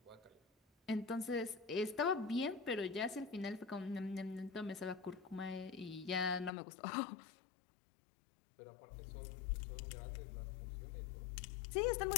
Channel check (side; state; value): right; drops out; at 6.5 s